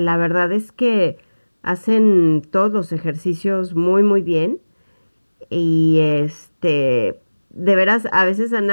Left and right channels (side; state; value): both; inverted; correlation -1.00